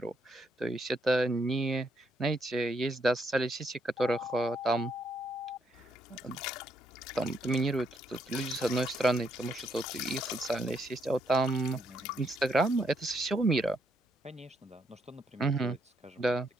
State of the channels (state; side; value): normal; both; correlation 0.75